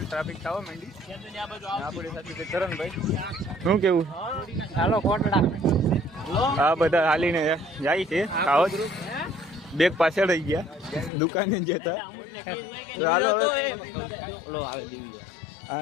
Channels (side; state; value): right; drops out; at 11.1 s